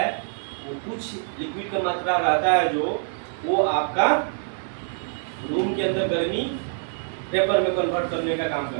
वो कुछ लिक्विड का मात्रा रहता है जो वो आपका रूम के अंदर गर्मी वेपर में कन्वर्ट करने का काम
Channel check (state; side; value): silent; left; digital silence